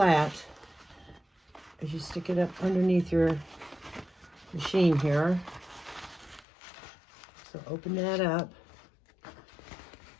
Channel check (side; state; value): right; drops out; at 6.5 s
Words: as you stick it up underneath your machine here. So open that up,